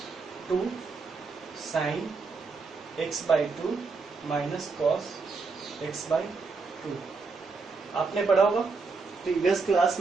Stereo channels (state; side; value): quieter; left; 4.4 dB